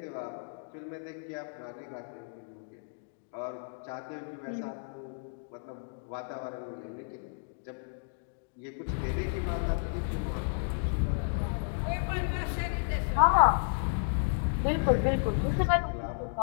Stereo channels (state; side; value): silent; right; digital silence